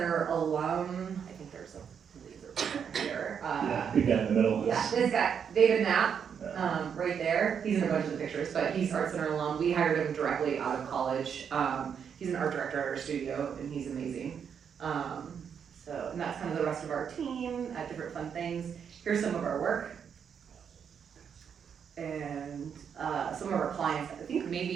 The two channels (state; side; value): quieter; left; 7.4 dB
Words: alum, I think there's a laser pointer here. Yeah, big guy in the middle. Yeah, this guy, David Knapp, Yeah. right there. He's in a bunch of the pictures, but he's ArtCenter alum. We hired him directly out of college. He's an art director at our studio, and he's amazing. And that's kind of the rest of our team at different fun things. Here's some of our work. And some of our clients, I think